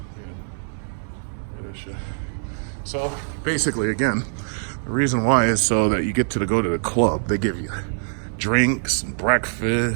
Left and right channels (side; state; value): left; silent; 63 dB below the other